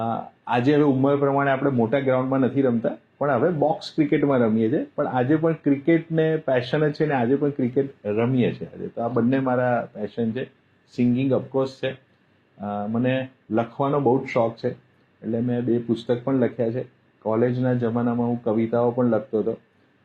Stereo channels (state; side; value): identical; both; correlation 1.00